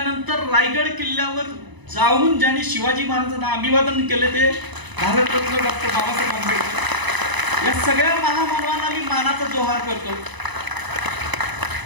रायगड किल्ल्यावर जाऊन ज्यांनी शिवाजी महाराजांना अभिवादन केले ते भारतरत्न डॉक्टर बाबासाहेब आंबेडकर. या सगळ्या महामानवांना मी मानाचा जोहार करतो.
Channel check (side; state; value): left; late; 1.0 ms